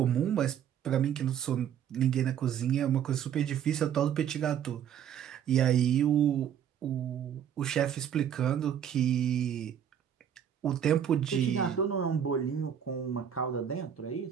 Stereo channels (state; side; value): quieter; left; 9.1 dB